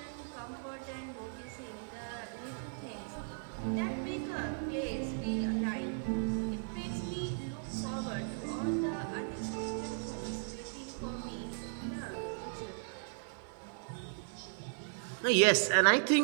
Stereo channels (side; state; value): left; silent; 53 dB below the other